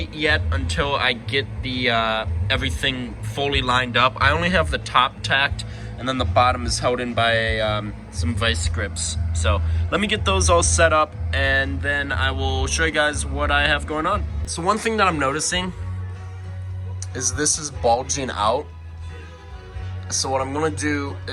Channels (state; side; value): identical; both; correlation 1.00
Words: yet until I get the everything fully lined up. I only have the top tacked, and then the bottom is held in by some vice grips. So let me get those all set up, and then I will show you guys what I have going on. So one thing that I'm noticing is this is bulging out. So what I'm gonna do